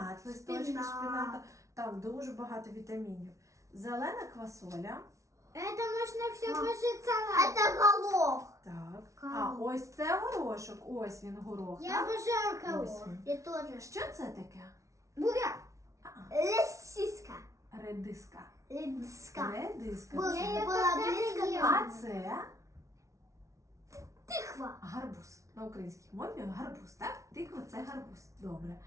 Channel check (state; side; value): late; left; 0.15 ms